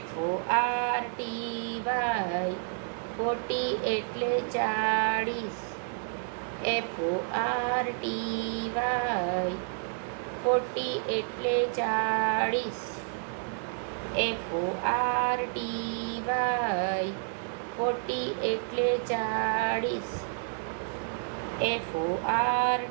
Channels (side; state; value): left; silent; 58 dB below the other